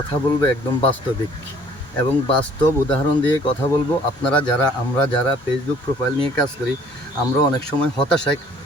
বলবো একদম বাস্তবিক এবং বাস্তব উদাহরণ দিয়ে কথা বলবো। আমরা যারা ফেসবুক প্রোফাইল নিয়ে কাজ করি, আমরা অনেক সময় হতাশায়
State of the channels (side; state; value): both; normal; correlation 0.56